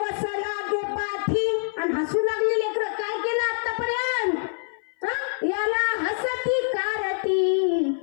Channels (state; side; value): silent; right; 58 dB below the other